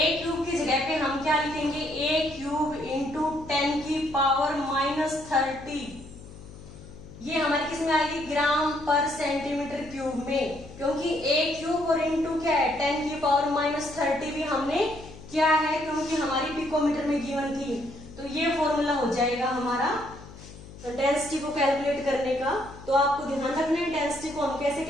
क्यूब की जगह पे हम क्या लिखेंगे ए क्यूब इंटू 10 की पावर -30। ये हमारे किस में आएगी ग्राम पर सेंटीमीटर क्यूब में, क्योंकि ए क्यूब और इंटू क्या है 10 की पावर -30 भी हमने क्या है क्योंकि हमारी पिकोमीटर में गिवन थी। तो ये फॉर्मूला हो जाएगा हमारा डेंसिटी को कैलकुलेट करने का। तो आपको ध्यान रखना है डेंसिटी को हम कैसे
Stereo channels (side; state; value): left; noise; hum, 17 dB below the sound